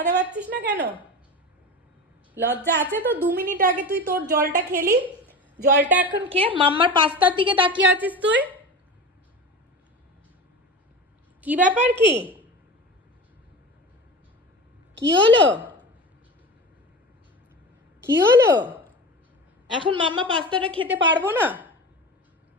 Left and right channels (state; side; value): normal; both; correlation 0.29